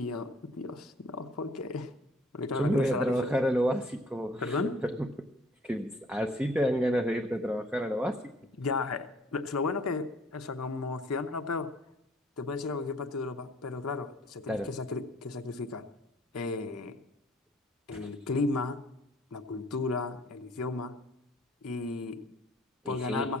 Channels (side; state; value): both; normal; correlation 0.57